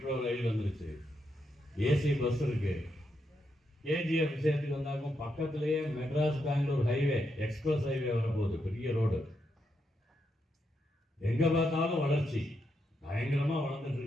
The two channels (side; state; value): both; normal; correlation 0.82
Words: ரயில் வந்துருச்சு, ஏசி பஸ் இருக்கு. கேஜிஎஃப் விஷயத்துக்கு வந்தாக்கும் பக்கத்திலேயே Madras Bangalore highway, express highway வரப்போகுது, பெரிய ரோடு. எங்க பார்த்தாலும் வளர்ச்சி, பயங்கரமா வளர்ந்துட்டு